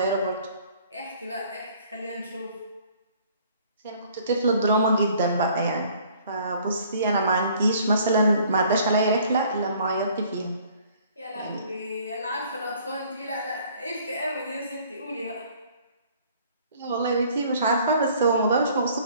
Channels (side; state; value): both; inverted; correlation -0.57